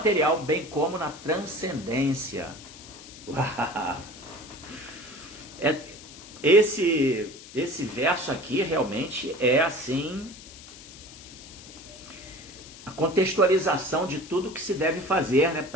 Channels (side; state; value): left; noise; hiss, 17 dB below the sound